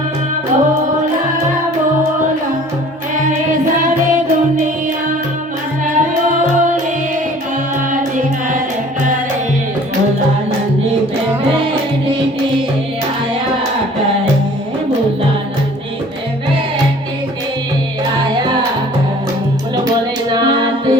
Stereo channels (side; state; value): both; normal; correlation 0.50